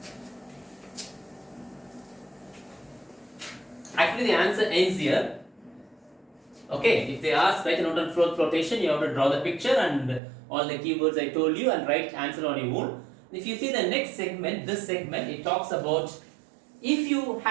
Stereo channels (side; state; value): left; drops out; at 10.2 s